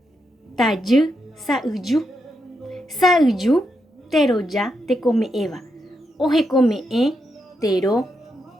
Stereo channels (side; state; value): both; normal; correlation 0.83